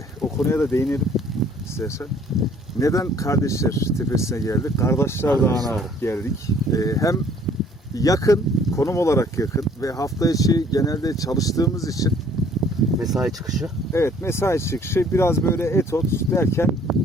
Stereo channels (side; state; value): both; normal; correlation 0.57